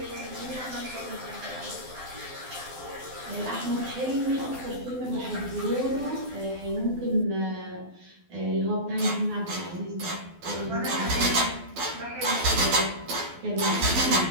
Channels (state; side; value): late; left; 12 ms